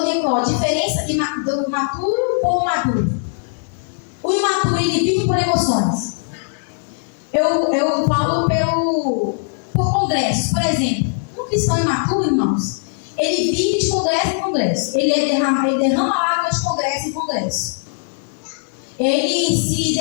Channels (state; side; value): silent; right; digital silence